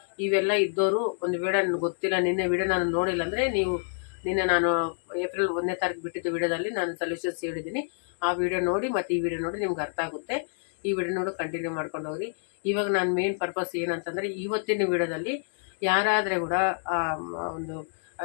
ಇವೆಲ್ಲ ಇದ್ದವರು ಒಂದು ವೇಳೆ ನನಗೆ ಗೊತ್ತಿಲ್ಲ, ನಿನ್ನೆ ವಿಡಿಯೋ ನಾನು ನೋಡಿಲ್ಲ ಅಂದರೆ ನೀವು ನಿನ್ನೆ ನಾನು ಏಪ್ರಿಲ್ 1ನೇ ತಾರೀಕು ಬಿಟ್ಟಿದ್ದು ವಿಡಿಯೋದಲ್ಲಿ ನಾನು ಸೊಲ್ಯೂಷನ್ಸ್ ಹೇಳಿದ್ದೀನಿ. ಆ ವಿಡಿಯೋ ನೋಡಿ ಮತ್ತು ಈ ವಿಡಿಯೋ ನೋಡಿ ನಿಮ್ಗೆ ಅರ್ಥ ಆಗುತ್ತೆ. ಈ ವಿಡಿಯೋ ನೋಡಿ ಕಂಟಿನ್ಯೂ ಮಾಡ್ಕೊಂಡು ಹೋಗ್ರಿ. ಇವಾಗ ನಾನು ಮೇನ್ ಪರ್ಪಸ್ ಏನಂತಂದರೆ, ಇವತ್ತಿನ ವಿಡಿಯೋದಲ್ಲಿ ಯಾರಾದರೆ ಕೂಡ ಒಂದು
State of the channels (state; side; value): silent; right; digital silence